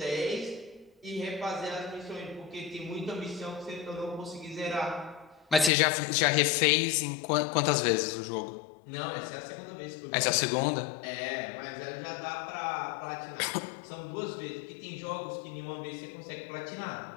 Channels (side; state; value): right; drops out; at 5.7 s